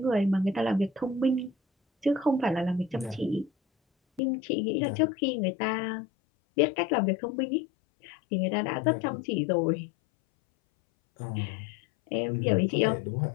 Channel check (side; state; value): right; drops out; at 4.2 s